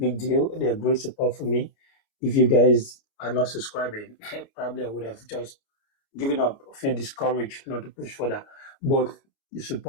deal. They're great support for me. If you guys are not subscribing, probably I would have just given up, feel discouraged not to push further. But the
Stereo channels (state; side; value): late; right; 29 ms